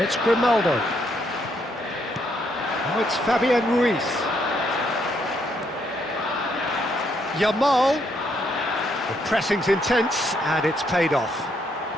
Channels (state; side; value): normal; both; correlation 0.74